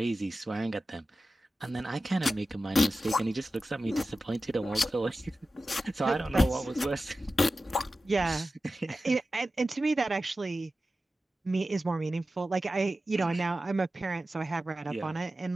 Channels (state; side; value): normal; both; correlation 0.94